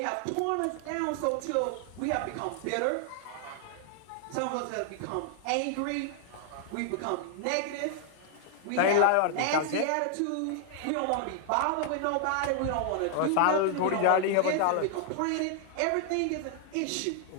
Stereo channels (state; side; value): different; both; correlation 0.00